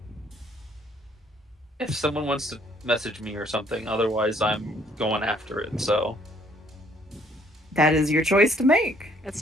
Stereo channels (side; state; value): both; normal; correlation 0.63